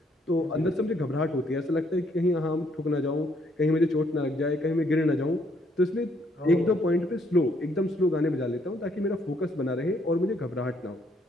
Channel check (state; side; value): normal; both; correlation 0.69